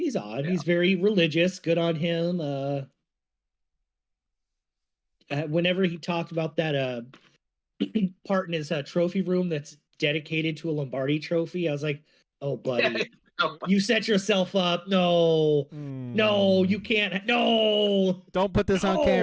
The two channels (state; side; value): identical; both; correlation 1.00